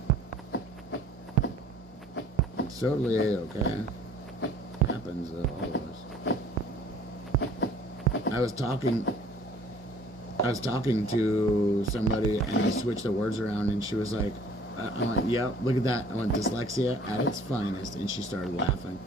It's totally A-okay. Happens to all of us. I was talking to somebody and I switched the words around and she was like, I went, yeah, look at that. I went, dyslexia at its finest, and she started laughing.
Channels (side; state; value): both; normal; correlation 0.53